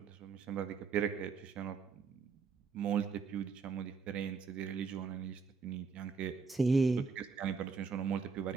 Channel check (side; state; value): left; quieter; 5.2 dB